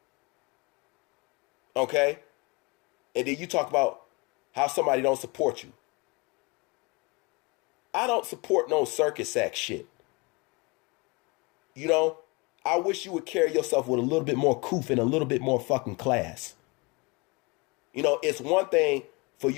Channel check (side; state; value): right; quieter; 27.4 dB